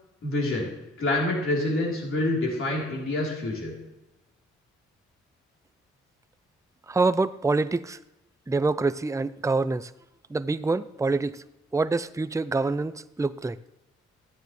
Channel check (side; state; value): both; normal; correlation 0.71